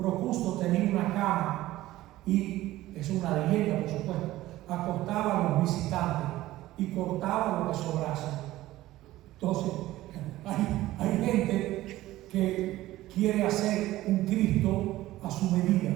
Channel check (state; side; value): quieter; left; 16.1 dB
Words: tenía una cama y, es una leyenda por supuesto, acostaba a los visitantes y cortaba lo que sobrase. Entonces, hay gente que quiere hacer un Cristo a su medida,